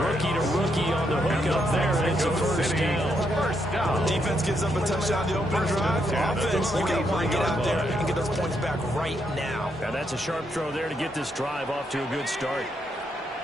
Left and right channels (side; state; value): both; normal; correlation 0.78